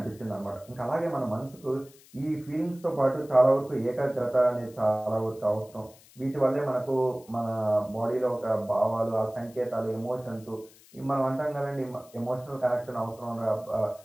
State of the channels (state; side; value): noise; left; hiss, 25 dB below the sound